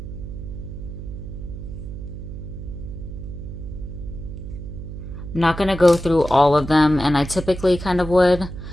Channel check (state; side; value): noise; right; hum, 9 dB below the sound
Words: I'm not going to go through all of them, and I typically kind of would,